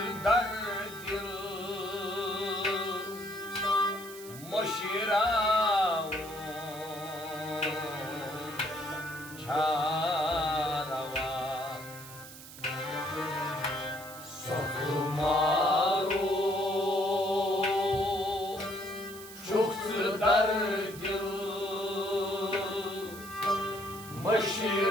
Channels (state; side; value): noise; right; hiss, 15 dB below the sound